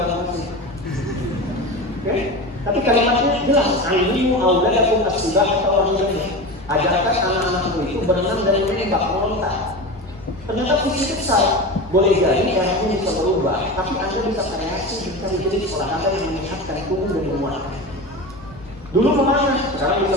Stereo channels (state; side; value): normal; both; correlation 0.27